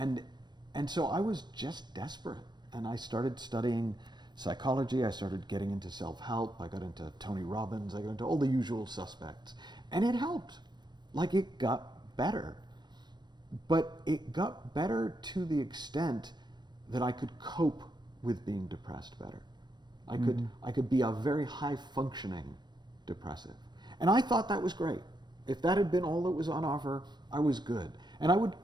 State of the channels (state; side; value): late; left; 0.21 ms